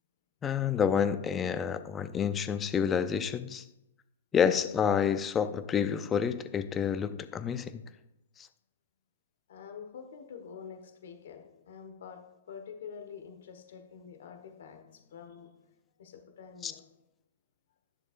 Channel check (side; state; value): right; quieter; 7.3 dB